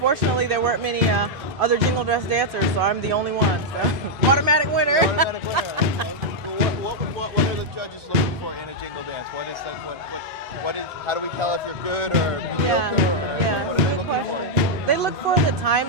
there weren't many other jingle dress dancers, so I'm the only one. So. Automatic winner. Automatic winner. What are the judges looking for in a jingle dance? What is how do we tell if you're good or mediocre? Yeah, What are they good looking question. They look for the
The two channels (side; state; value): both; normal; correlation -0.03